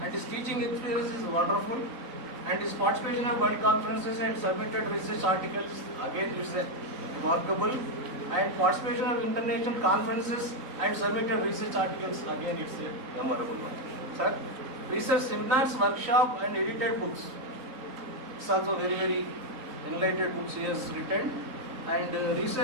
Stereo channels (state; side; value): late; left; 3.8 ms